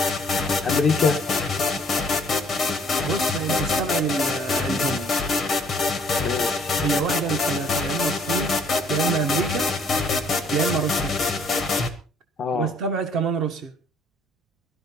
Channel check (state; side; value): normal; both; correlation 0.61